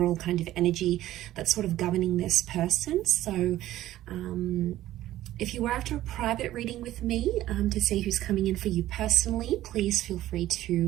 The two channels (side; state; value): left; quieter; 14.3 dB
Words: kind of energy that's sort of governing this person. So if you were after a private reading with me to see who's coming in for you personally, please feel free